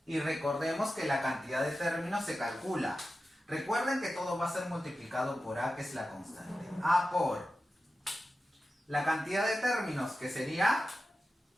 Y recordemos que la cantidad de términos se calcula. Recuerden que todo va a ser multiplicado por A, que es la constante. A por la cantidad de términos, que sería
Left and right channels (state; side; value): normal; both; correlation 0.93